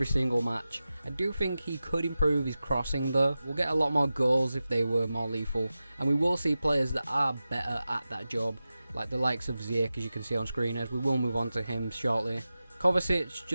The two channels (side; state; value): both; inverted; correlation -0.94